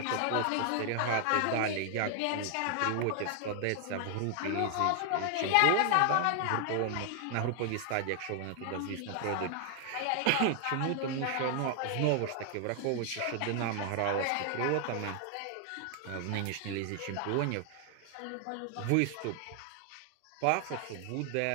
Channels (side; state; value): both; different; correlation 0.00